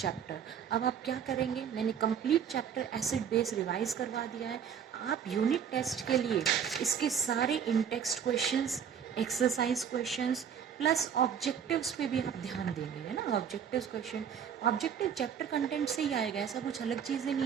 अब आप क्या करेंगे? मैंने complete chapter acid base revise करवा दिया है. आप यूनिट टेस्ट के लिए इसके सारे in text questions, exercise questions plus objectives पे भी आप ध्यान देंगे, है ना. Objective question, objective chapter content से ही आएगा, ऐसा कुछ अलग चीज़ें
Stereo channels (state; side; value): quieter; left; 7.9 dB